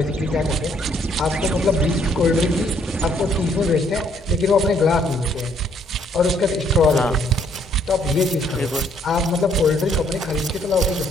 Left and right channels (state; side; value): normal; both; correlation 0.67